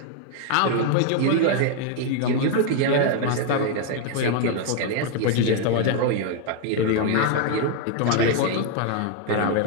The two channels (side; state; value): both; different; correlation 0.00